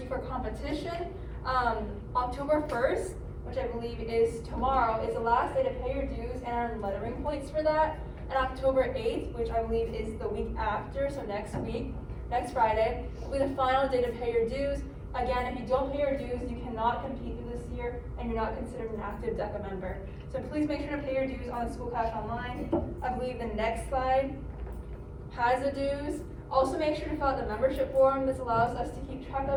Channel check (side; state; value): both; identical; correlation 1.00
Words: you for competition. October 1st, which I believe is tomorrow, is the last day to pay your dues and earn lettering points for that. And October 8th, which I believe is the week after, so next week, next Friday, will be the final day to pay your dues. Again, if you don't pay your dues, you cannot compete through this year and you're not considered an active DECA member. So please make sure to pay your dues on the School Cash Online. I believe the next slide has the dues. Also make sure to fill out the membership form. This allows us to keep track